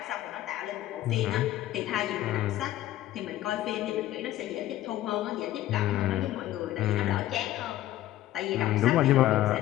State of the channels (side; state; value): right; quieter; 14.3 dB